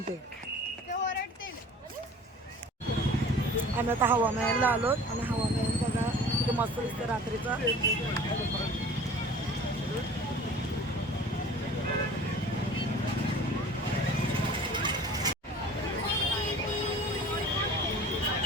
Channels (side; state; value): both; normal; correlation 0.44